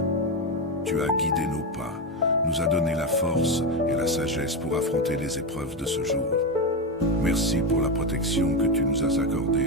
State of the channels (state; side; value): normal; both; correlation 0.11